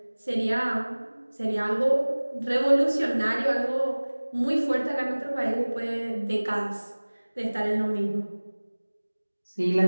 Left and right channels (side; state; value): both; inverted; correlation -1.00